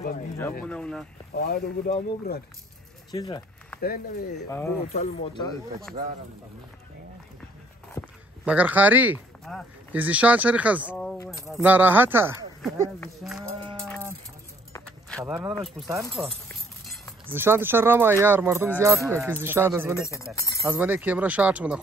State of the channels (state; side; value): normal; both; correlation 0.62